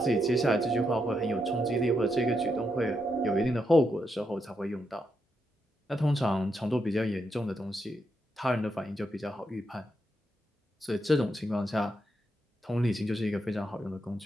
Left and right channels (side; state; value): both; normal; correlation 0.82